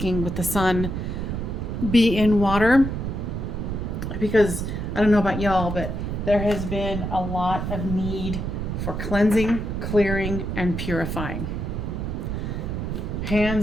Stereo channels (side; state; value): right; noise; rumble, 3 dB below the sound